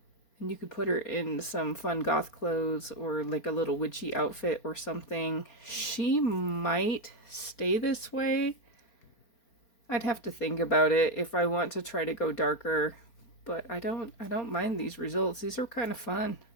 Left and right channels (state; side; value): late; right; 4.4 ms